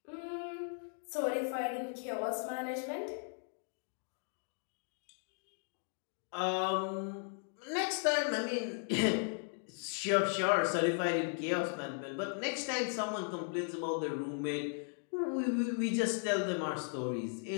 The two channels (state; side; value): silent; right; 53 dB below the other